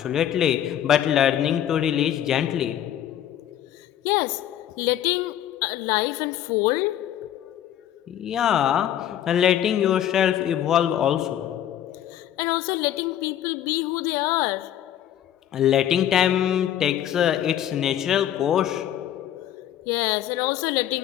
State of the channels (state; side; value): quieter; right; 11.1 dB